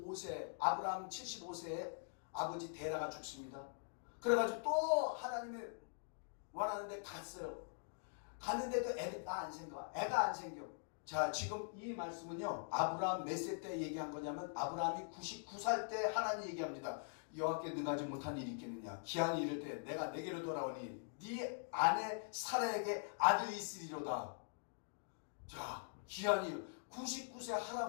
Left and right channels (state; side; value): silent; right; digital silence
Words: 아브라함 75세에 아버지 데라가 죽습니다. 그래가지고 또 하나님이 원하는데 갔어요. 갔는데 그 애가 안 생겨. 자, 지금 이 말씀은요 아브라함 몇 세 때 얘기한 거냐면 아브라함이 99살 때 하나님 얘기합니다. 여호와께 능하지 못한 일이 있겠느냐. 기한이 이를 때 내가 내게로 돌아오니 네 아내 사라에게 아들이 있으리로다. 자, 기한이 99세